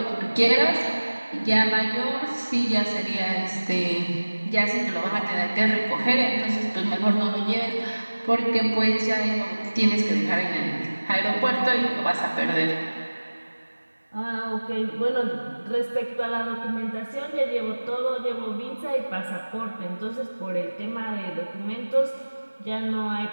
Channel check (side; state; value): both; inverted; correlation -1.00